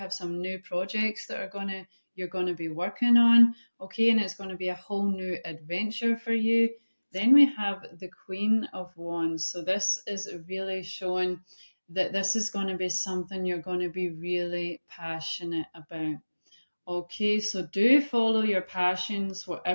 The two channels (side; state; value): both; inverted; correlation -1.00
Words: some new projects that are going to you're going to be working on, okay, and it's going to be a whole new adventure for you. Then we have the Queen of Wands. So this is really showing that this is going to be something you're going to be really passionate about. Okay, so do follow your passions,